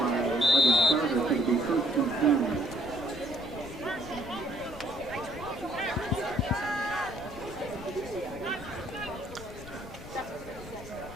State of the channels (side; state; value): left; noise; rumble, 14 dB below the sound